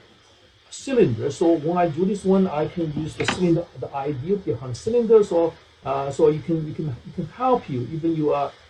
cylinder. So when I do this one, I can use the cylinder, the idea behind cylinder. So so you can help you even you are.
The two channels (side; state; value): both; identical; correlation 1.00